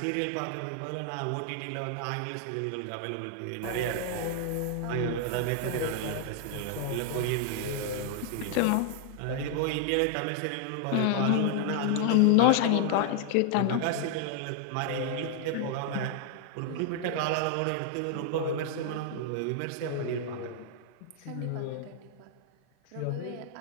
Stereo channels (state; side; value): different; both; correlation 0.00